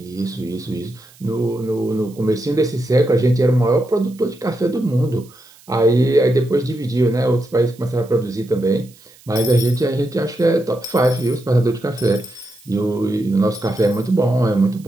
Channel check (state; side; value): noise; right; hiss, 26 dB below the sound